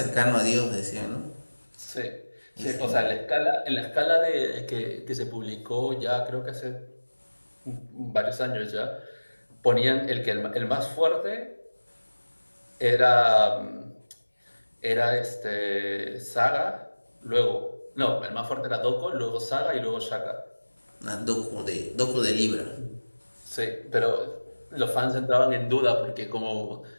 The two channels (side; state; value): both; inverted; correlation -1.00